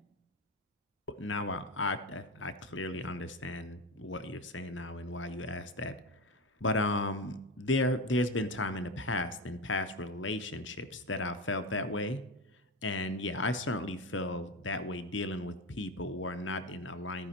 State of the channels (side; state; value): both; normal; correlation 0.19